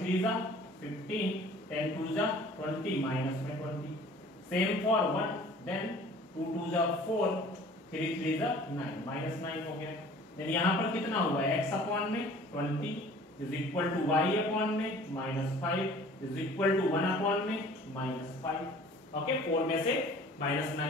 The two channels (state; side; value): normal; both; correlation 0.49